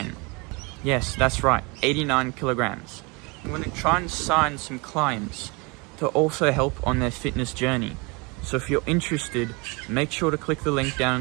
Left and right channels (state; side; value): quieter; left; 28.5 dB